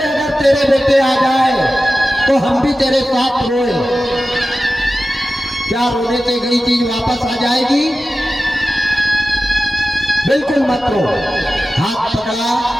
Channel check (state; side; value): normal; both; correlation 0.94